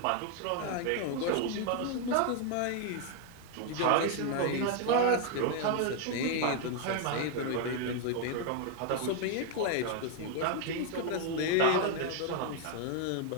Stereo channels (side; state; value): both; different; correlation 0.01